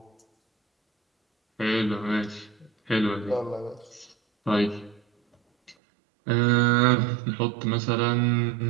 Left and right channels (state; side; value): drops out; left; at 5.8 s